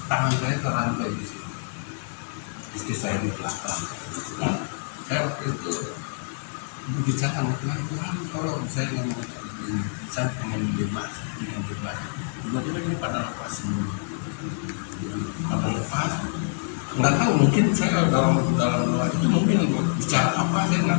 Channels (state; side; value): silent; right; digital silence